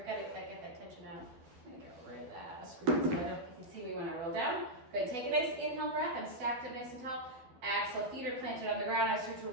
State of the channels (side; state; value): left; late; 12 ms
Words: got to get that tension out. I'm going to get rid of that screw so you can see me when I roll down. Good. Take a nice inhale breath. I'm stacked up nice and tall. Exhale, feet are planted on the ground. I start to